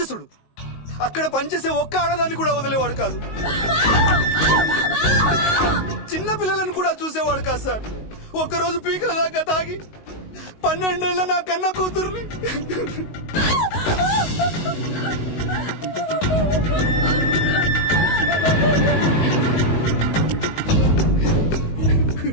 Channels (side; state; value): right; late; 19 ms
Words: అక్కడ పనిచేసే ఒక్క ఆడదాన్ని కూడా వదిలేవాడు కాదు. చిన్న పిల్లలను కూడా చూసేవాడు కాదు సార్. ఒక్కరోజు పీకల దాకా తాగి 12 ఏళ్ల నా కన్న కూతుర్ని